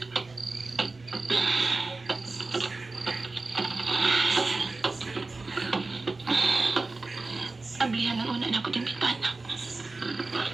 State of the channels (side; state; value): left; quieter; 3.5 dB